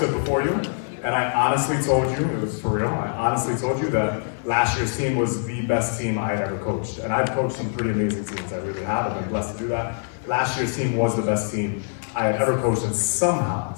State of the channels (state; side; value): silent; right; 63 dB below the other